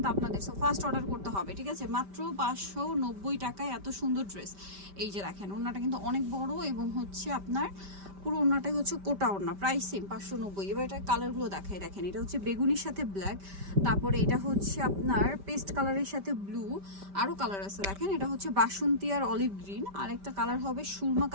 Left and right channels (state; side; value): late; left; 5.1 ms